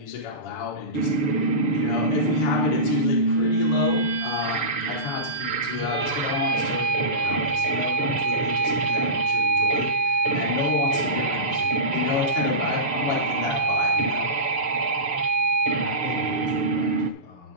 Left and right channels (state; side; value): late; right; 6.9 ms